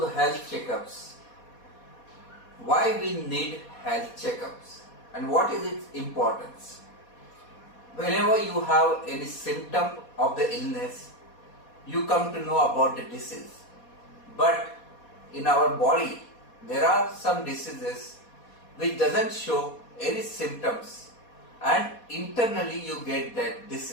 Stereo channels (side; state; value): right; late; 4.2 ms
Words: health checkups. Why we need health checkups and what is its importance? Whenever you have any symptom of the illness, you come to know about the disease. But in our body, there are some diseases which doesn't show any symptoms and internally you get that